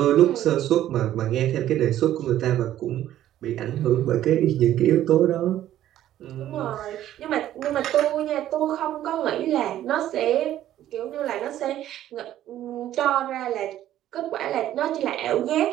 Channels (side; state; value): left; quieter; 12.5 dB